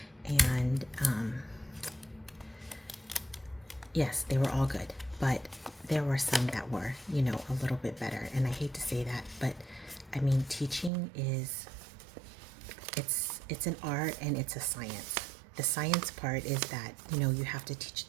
And yes, they were all good. But there were some that were, you know, a little bit better. And I hate to say that, but I mean, teaching is, it's an art and it's a science. The science part is that, you know, you have to teach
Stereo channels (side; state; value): left; drops out; at 10.9 s